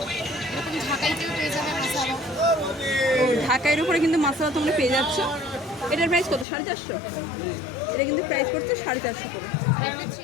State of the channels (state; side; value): drops out; right; at 6.5 s